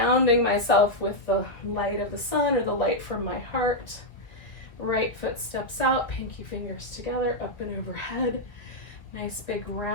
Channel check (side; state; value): right; late; 1.7 ms